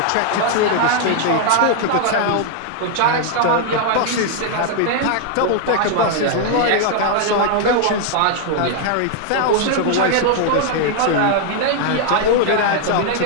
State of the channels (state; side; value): different; both; correlation 0.00